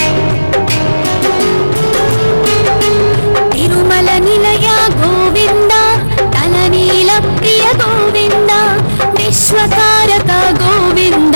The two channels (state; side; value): inverted; both; correlation -1.00